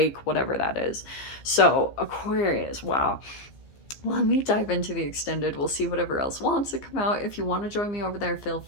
whatever that is. So Aquarius, wow. Let me dive into the extended. We'll see whatever else wants to come out. If you want to join me over there, feel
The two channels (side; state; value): right; late; 15 ms